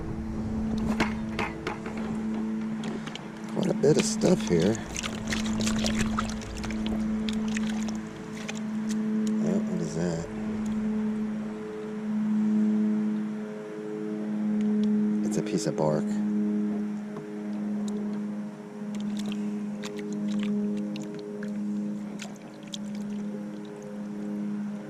Quite a bit of stuff here. Oh, what is that? It's a piece of bark.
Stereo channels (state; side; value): identical; both; correlation 1.00